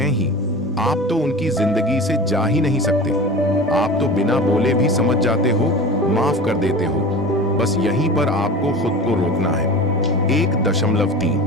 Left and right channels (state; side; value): normal; both; correlation 0.34